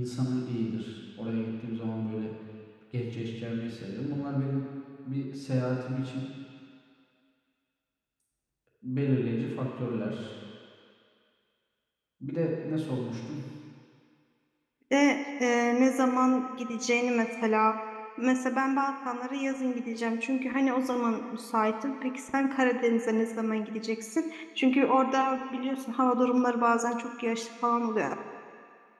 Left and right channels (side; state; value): both; identical; correlation 1.00